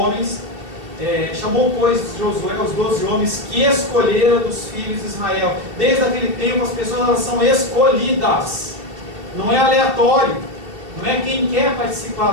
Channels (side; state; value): left; late; 2.7 ms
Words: Chamou, pois, Josué os 12 homens que escolheram dos filhos de Israel. Desde aquele tempo as pessoas, elas são escolhidas. Não é aleatório. Não é quem quer